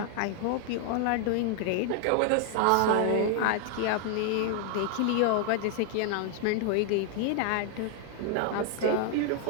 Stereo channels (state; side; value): different; both; correlation 0.00